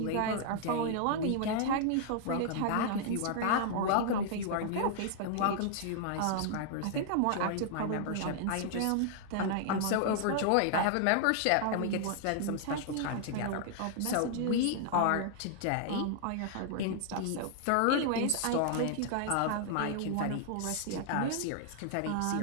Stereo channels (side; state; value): both; different; correlation 0.00